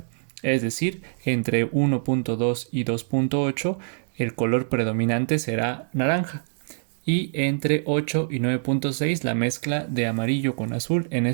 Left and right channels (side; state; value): left; silent; digital silence